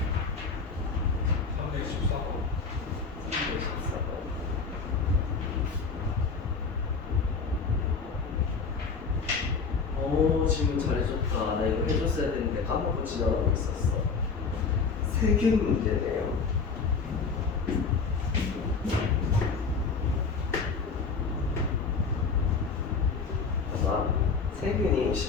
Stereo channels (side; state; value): right; quieter; 5.0 dB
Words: 오, 질문 잘해줬다. 나 이거 해줬어야 되는데 까먹고 지나가고 있었어. 세균 문제네요. 봐봐, 세균이